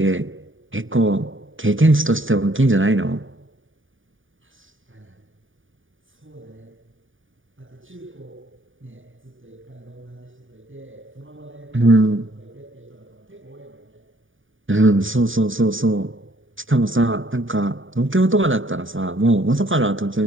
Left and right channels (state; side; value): late; left; 0.57 ms